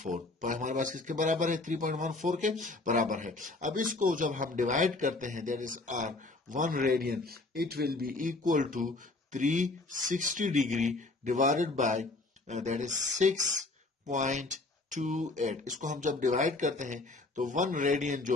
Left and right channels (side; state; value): right; quieter; 3.2 dB